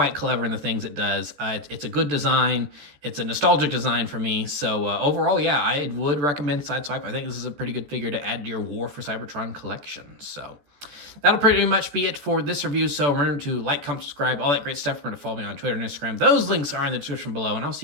clever in the things it does. It's a good design. It's a nostalgic design for me. So overall, yeah, I would recommend Sideswipe. I think this is a pretty good figure to add to your War for Cybertron collection. So that'll pretty much be it for this review. So remember to like, comment, subscribe, all that great stuff. Remember to follow me on Twitter and Instagram. Those links are in the description below, and I'll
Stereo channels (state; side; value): late; left; 14 ms